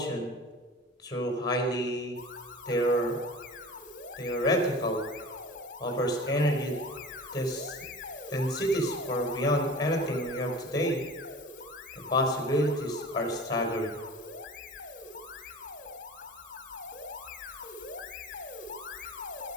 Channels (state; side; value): normal; both; correlation 0.39